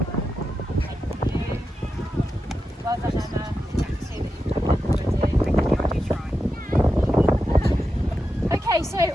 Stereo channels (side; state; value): both; normal; correlation 0.89